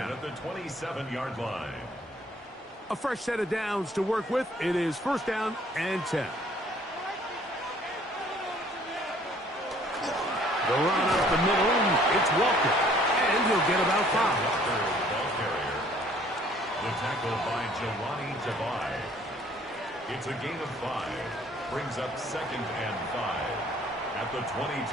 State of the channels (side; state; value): both; normal; correlation 0.58